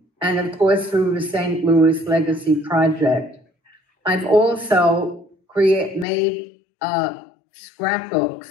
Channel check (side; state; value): right; drops out; at 6.1 s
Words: and of course through the St. Louis Legacy Project. I've also made scrapbooks